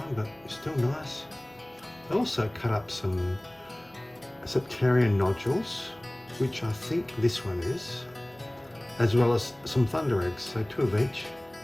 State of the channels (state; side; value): noise; right; hum, 30 dB below the sound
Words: but still nice. I also cut up some septarian nodules, which I think this one is. as well as some thunder eggs, so 2 of each.